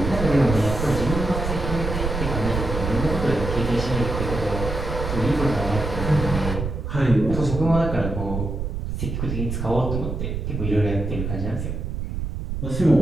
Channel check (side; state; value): right; noise; rumble, 4 dB below the sound